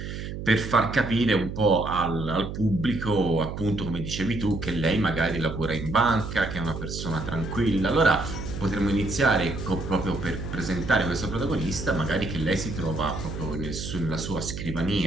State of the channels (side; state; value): right; noise; hum, 7 dB below the sound